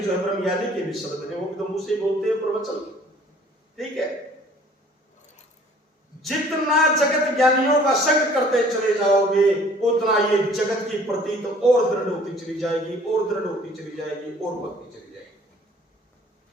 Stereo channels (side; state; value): both; normal; correlation 0.54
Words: है ब्रह्म ज्ञानी के भी शब्द हैं, वो भी तो मुझसे बोलते हैं प्रवचन। ठीक है, जितना जगत ज्ञानियों का संग करते चले जाओगे उतना ये जगत की प्रतीत और दृढ़ होती चली जाएगी, और दृढ़ होती चली जाएगी, और बढ़ती चली जाएगी।